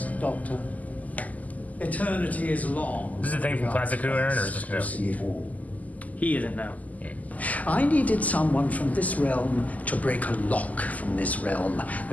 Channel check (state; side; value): late; right; 0.077 ms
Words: Doctor. Eternity is long. Is this a thing from Classic Who, Aaron, or is this new? See it all. He isn't now. I needed someone from this realm to break a lock from this realm.